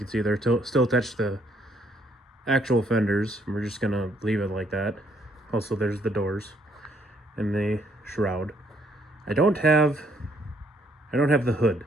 see they're still attached to the actual fenders. We're just gonna leave it like that. Also, there's the doors and the shroud. I don't have I don't have the hood.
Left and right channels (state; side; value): normal; both; correlation 0.69